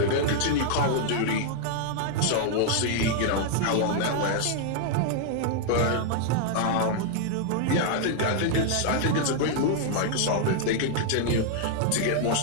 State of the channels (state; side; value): different; both; correlation 0.00